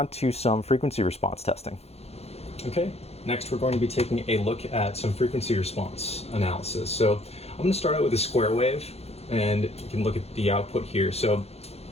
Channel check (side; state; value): right; late; 0.30 ms